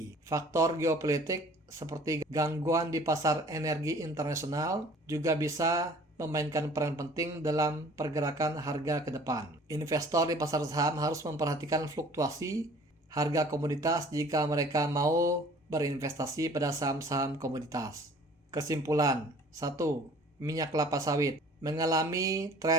Faktor geopolitik seperti gangguan di pasar energi internasional juga bisa memainkan peran penting dalam pergerakan harga ke depan. Investor di pasar saham harus memperhatikan fluktuasi harga komoditas jika mereka mau berinvestasi pada saham-saham komoditas. Kesimpulan: 1. Minyak kelapa sawit mengalami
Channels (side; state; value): both; normal; correlation 0.51